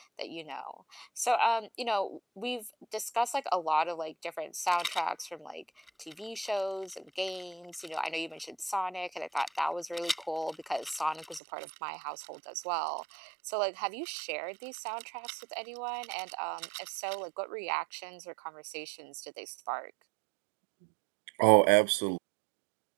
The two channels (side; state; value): left; drops out; at 11.4 s